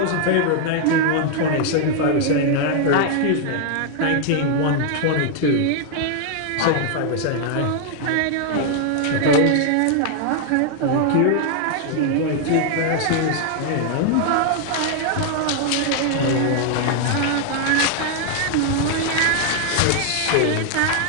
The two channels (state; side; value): different; both; correlation 0.00